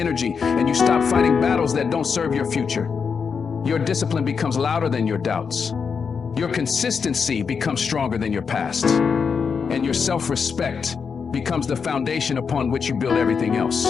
and you stop fighting battles that don't serve your future. Your discipline becomes louder than your doubts. Your consistency becomes stronger than your past. And your self-respect becomes the foundation upon which you build everything else.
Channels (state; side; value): quieter; right; 5.9 dB